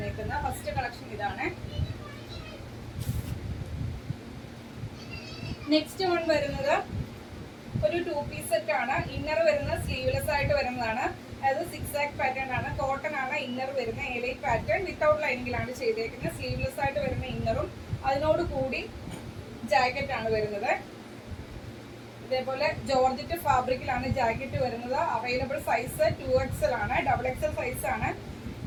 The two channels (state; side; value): identical; both; correlation 1.00